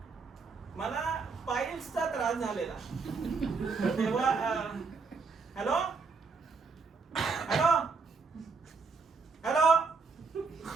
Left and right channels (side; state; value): left; quieter; 4.6 dB